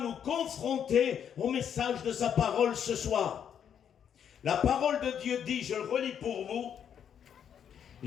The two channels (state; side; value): quieter; right; 8.5 dB